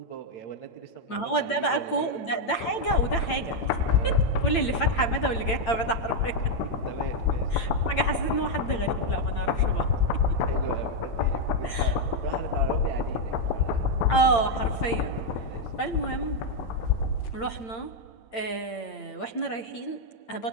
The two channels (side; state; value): right; late; 8.8 ms